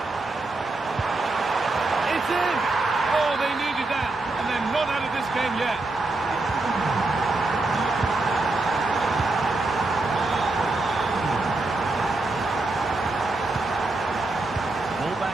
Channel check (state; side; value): quieter; left; 3.1 dB